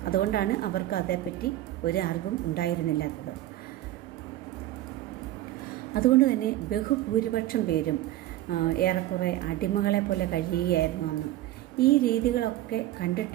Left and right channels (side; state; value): left; quieter; 14.7 dB